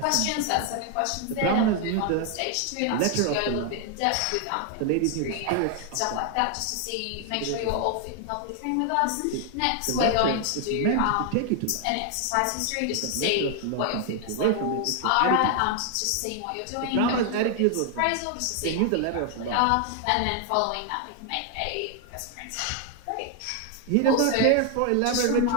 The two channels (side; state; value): both; different; correlation 0.00